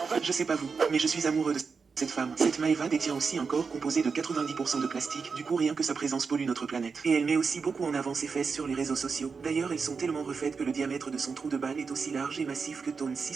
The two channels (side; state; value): left; quieter; 5.2 dB